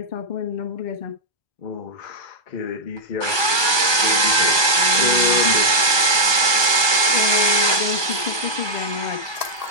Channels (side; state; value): right; late; 1.2 ms